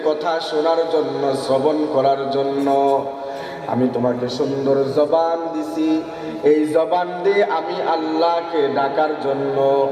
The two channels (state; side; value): identical; both; correlation 1.00